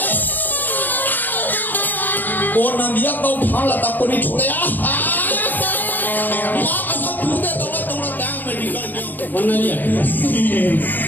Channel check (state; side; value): late; right; 0.088 ms